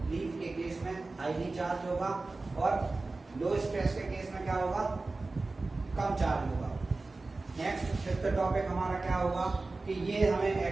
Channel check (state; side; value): quieter; left; 3.4 dB